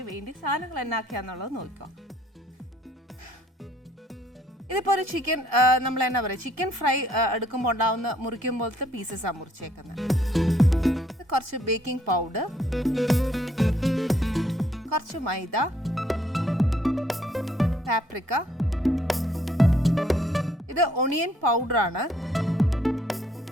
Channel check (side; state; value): both; normal; correlation 0.66